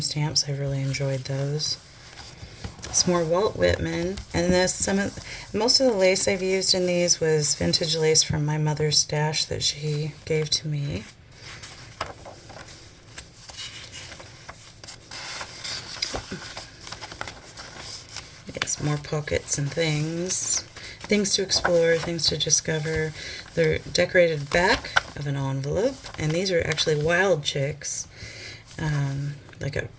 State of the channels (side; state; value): both; identical; correlation 1.00